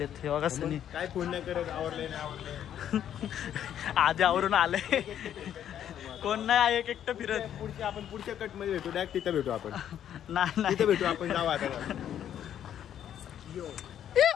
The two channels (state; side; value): quieter; right; 10.1 dB